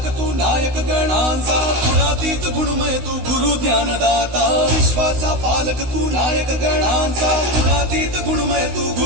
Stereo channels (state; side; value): late; left; 16 ms